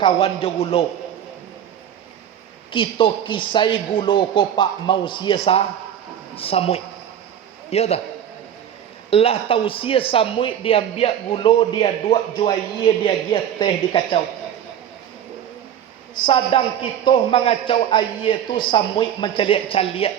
jo gulo. Kita kisai gulo ko pak mau siasa samui. Ya dah. Lah tausia samui dia biak gulo dia dua juaye dia gia teh di kacau. Sadang kita mengacau aye tu samui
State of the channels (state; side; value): quieter; left; 9.7 dB